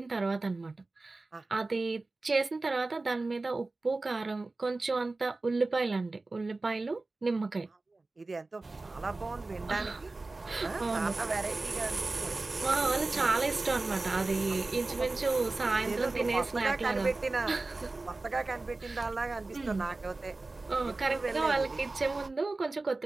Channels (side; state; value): left; quieter; 3.3 dB